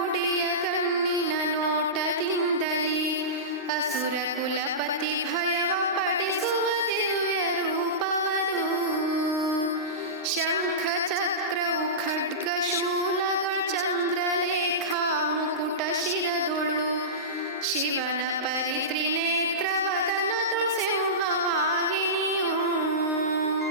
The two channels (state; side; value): normal; both; correlation -0.19